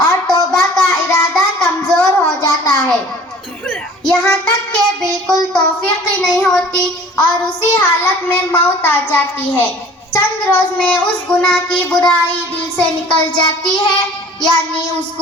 اور توبہ کا ارادہ کمزور ہو جاتا ہے، یہاں تک کہ بالکل توفیق ہی نہیں ہوتی اور اسی حالت میں موت آ جاتی ہے۔ چند روز میں اس گناہ کی برائی دل سے نکل جاتی ہے، یعنی اس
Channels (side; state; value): both; normal; correlation 0.48